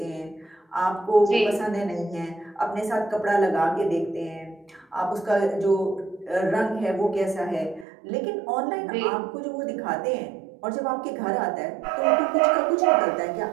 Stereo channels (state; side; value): drops out; left; at 7.9 s